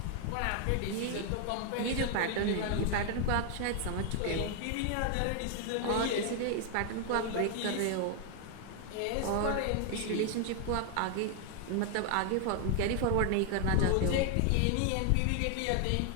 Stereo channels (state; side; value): different; both; correlation 0.00